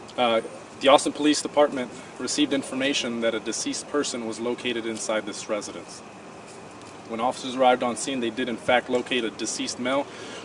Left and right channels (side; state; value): both; identical; correlation 1.00